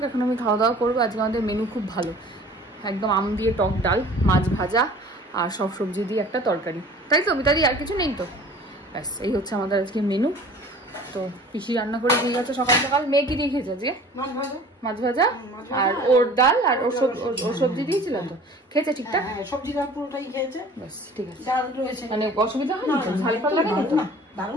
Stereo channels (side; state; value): both; normal; correlation 0.46